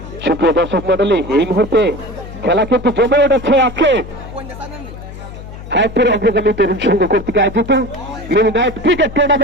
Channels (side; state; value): left; noise; hum, 13 dB below the sound